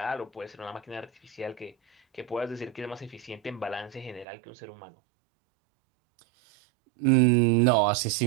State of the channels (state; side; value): drops out; left; at 4.2 s